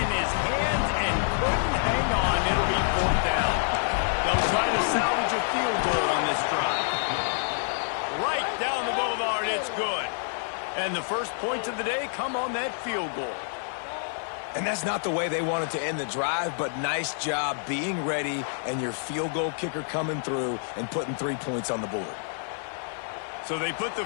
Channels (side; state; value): right; silent; digital silence